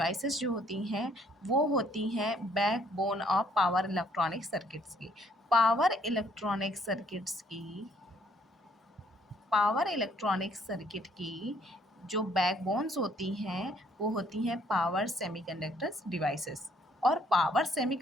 जो होती हैं वो होती हैं backbone of power electronic circuits की। पावर इलेक्ट्रॉनिक सर्किट्स की पावर इलेक्ट्रॉनिक सर्किट की जो बैकबोन्स होती हैं वो होती हैं पावर सेमीकंडक्टर्स डिवाइसेस। और पावर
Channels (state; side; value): normal; both; correlation 0.65